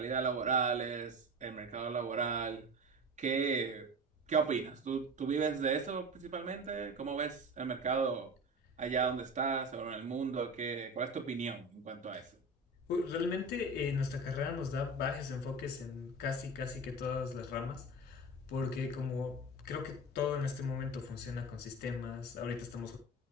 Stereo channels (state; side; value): normal; both; correlation 0.30